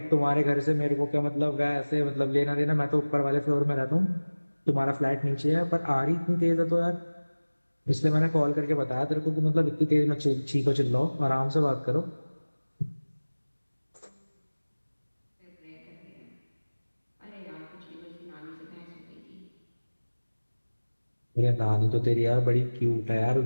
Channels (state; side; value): inverted; both; correlation -1.00